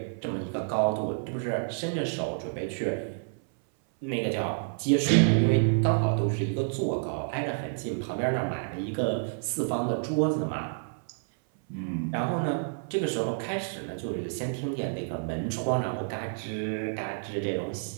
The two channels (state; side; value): silent; left; 59 dB below the other